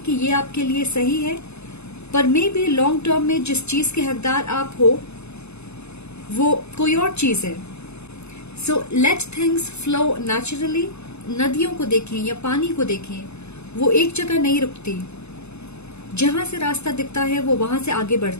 ये आपके लिए सही है, पर मे बी लॉन्ग टर्म में जिस चीज के हकदार आप हो वो कोई और चीज है। So let things flow naturally. नदियों को देखें या पानी को देखें, वो एक जगह नहीं रुकती। जहां से रास्ता दिखता है वो वहां से आगे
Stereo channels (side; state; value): right; late; 0.80 ms